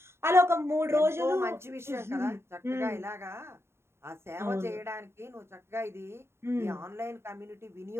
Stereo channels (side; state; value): left; late; 0.12 ms